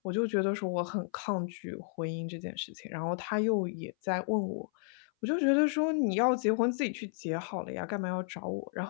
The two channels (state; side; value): silent; right; 56 dB below the other